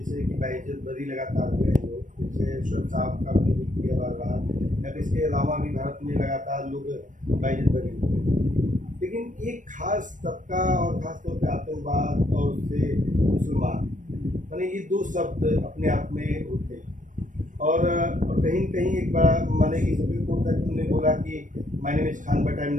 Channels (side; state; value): left; late; 0.37 ms